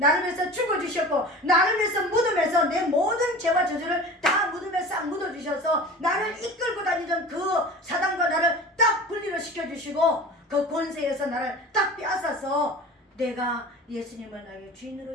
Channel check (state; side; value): normal; both; correlation 0.37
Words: 위해서 죽어주셨고 나를 위해서 무덤에서 내 모든 죄와 저주를 다 무덤에 싹 묻어주셔서 나를 이끌고 다니던 그 사단과 나를 딱 분리를 시켜주시고 그 권세에서 나를 딱 빼앗아서 내가 예수님을 나의